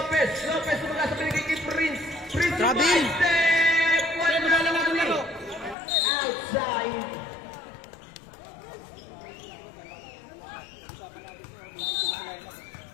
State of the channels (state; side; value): drops out; right; at 5.8 s